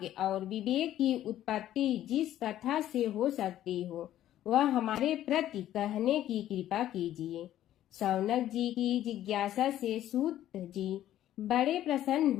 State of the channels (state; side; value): quieter; right; 12.6 dB